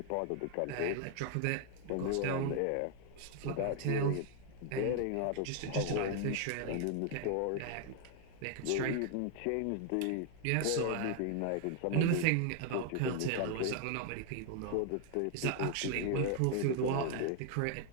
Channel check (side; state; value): both; different; correlation 0.00